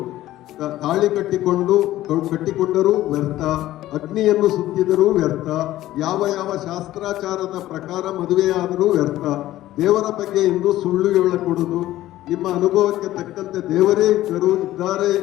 ತಾಳಿ ಕಟ್ಟಿಕೊಂಡರೂ ವ್ಯರ್ಥ, ಅಗ್ನಿಯನ್ನು ಸುತ್ತಿದರೂ ವ್ಯರ್ಥ, ಯಾವ ಶಾಸ್ತ್ರಾಚಾರದ ಪ್ರಕಾರ ಮದುವೆಯಾದರೂ ವ್ಯರ್ಥ. ದೇವರ ಬಗ್ಗೆ ಎಂದು ಸುಳ್ಳು ಹೇಳಕೊಡುವುದು. ನಿಮ್ಮ ಅನುಭವಕ್ಕೆ ತಕ್ಕಂತೆ ದೇವರೇ ಇದ್ದಾರೆ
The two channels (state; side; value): quieter; right; 14.8 dB